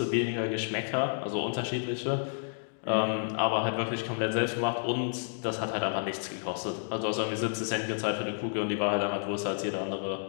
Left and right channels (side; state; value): right; silent; digital silence